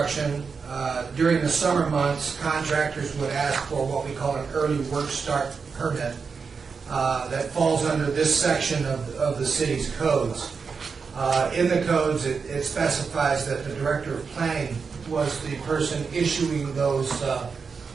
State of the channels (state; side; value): quieter; left; 5.4 dB